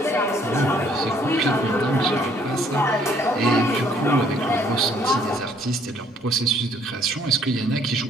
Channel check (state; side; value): normal; both; correlation 0.63